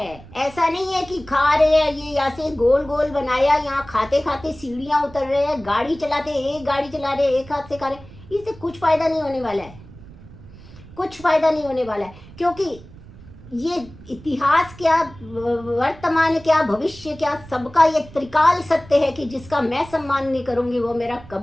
ऐसा नहीं है कि खा रहे हैं, ये ऐसे गोल गोल बनाया, यहाँ खाते खाते सीढ़ियाँ उतर रहे हैं, गाड़ी चलाते एक गाड़ी चला रहे, एक हाथ से खा रहे, इससे कुछ फायदा नहीं होने वाला है, कुछ फायदा नहीं होने वाला है। क्योंकि ये इतिहास क्या, वर्तमान क्या, भविष्य क्या, सबका ये त्रिकाल सत्य है कि जिसका मैं सम्मान नहीं करूंगी वो मेरा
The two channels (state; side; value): noise; right; rumble, 19 dB below the sound